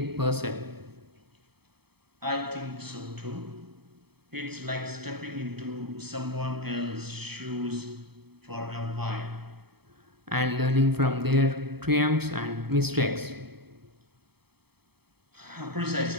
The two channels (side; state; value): left; late; 0.97 ms